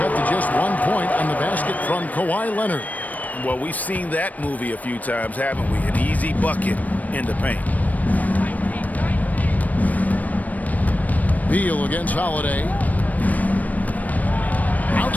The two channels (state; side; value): late; right; 0.075 ms